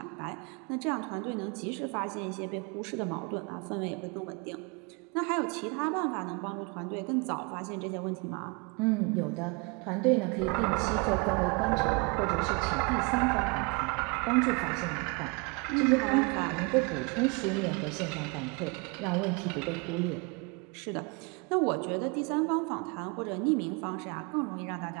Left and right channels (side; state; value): left; quieter; 30.6 dB